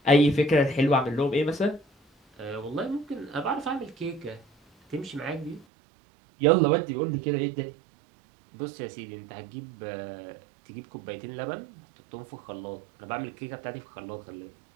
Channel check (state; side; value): drops out; left; at 5.7 s